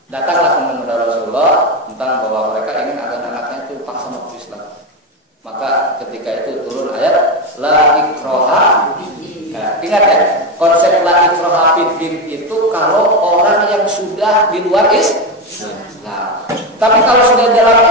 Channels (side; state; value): both; normal; correlation 0.13